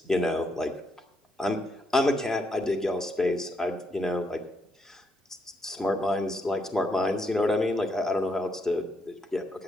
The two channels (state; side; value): normal; both; correlation 0.78